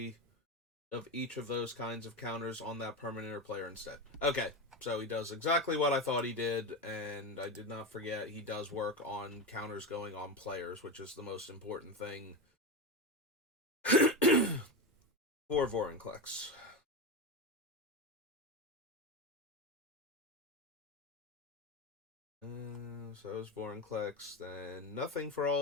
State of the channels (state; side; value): normal; both; correlation 0.17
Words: of each of those kinds of counters on that permanent or player instead. Okay, so he does exactly what I thought he did, and I did not forget he does work on counters going on players, which is the most important thing for Vorinclex. So is Vorinclex, then nothing for